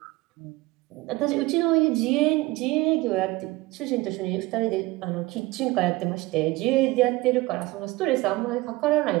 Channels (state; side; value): quieter; left; 20.7 dB